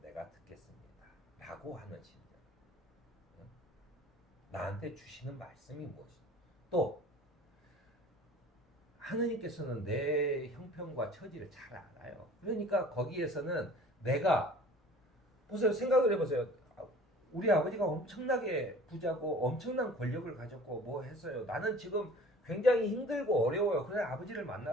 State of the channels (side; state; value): both; normal; correlation 0.46